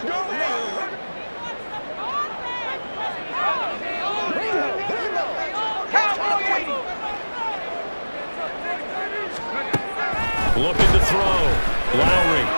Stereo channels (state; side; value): inverted; both; correlation -1.00